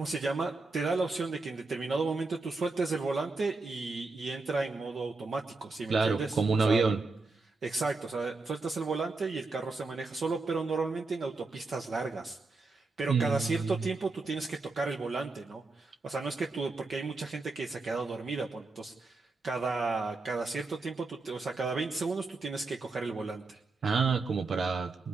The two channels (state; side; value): quieter; left; 3.7 dB